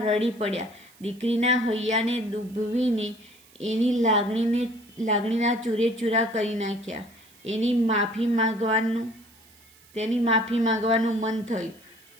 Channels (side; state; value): right; noise; hiss, 27 dB below the sound